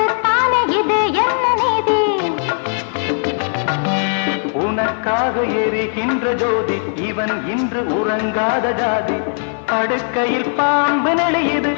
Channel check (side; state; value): right; silent; 56 dB below the other